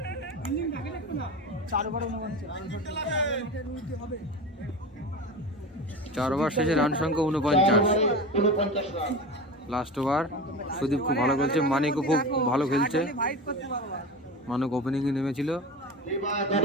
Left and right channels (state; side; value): normal; both; correlation 0.28